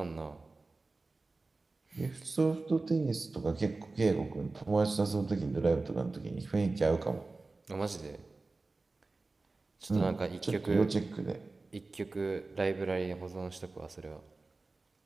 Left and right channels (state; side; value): quieter; left; 3.5 dB